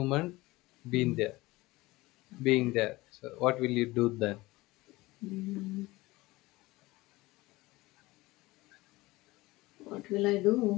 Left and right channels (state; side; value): quieter; right; 20.3 dB